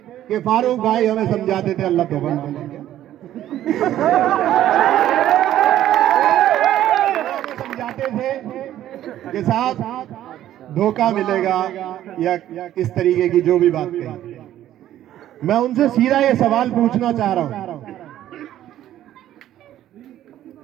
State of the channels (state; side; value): quieter; left; 12.5 dB